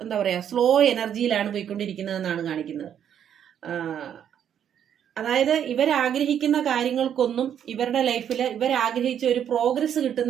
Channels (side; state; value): left; quieter; 9.2 dB